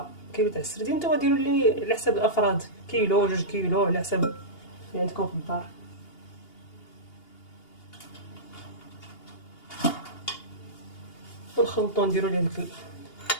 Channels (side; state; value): right; late; 2.8 ms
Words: كيلو تاع السردين. نتوما ديروا لي على حسب الافراد، كيلو 2 كيلو على حسب اللي عندكم في الدار. ونخلطو، نديرو ليه داك